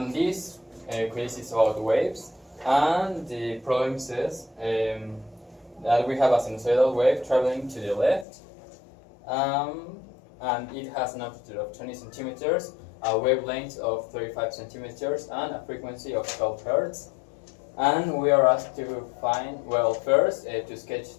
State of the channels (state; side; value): drops out; right; at 8.2 s